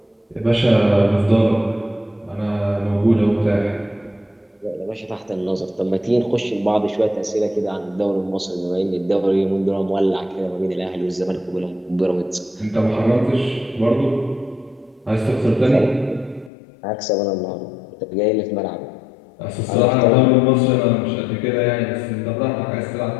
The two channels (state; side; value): drops out; right; at 16.5 s